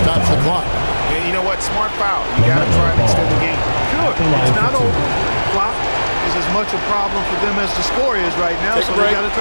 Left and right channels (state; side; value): inverted; both; correlation -1.00